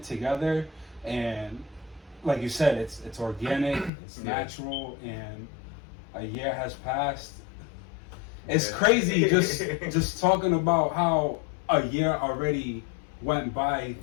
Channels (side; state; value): right; drops out; at 3.9 s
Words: together, and like you said, it's organic, it's natural, and a year has passed. It's crazy just talking about how a year already went by,